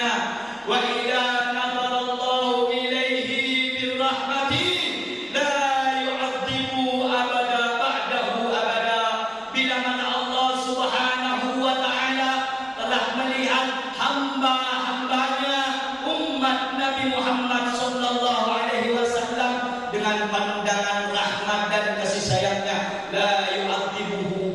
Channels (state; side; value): identical; both; correlation 1.00